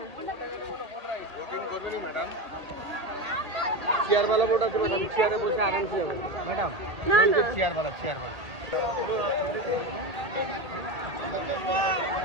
চেয়ার वाला बोर्ड আছে ম্যাডাম, চেয়ারে বসে আরামসে যাবেন ম্যাডাম। না না, চেয়ার वाला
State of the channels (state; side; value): late; left; 2.0 ms